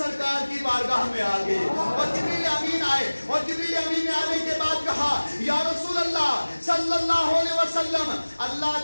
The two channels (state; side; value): inverted; both; correlation -1.00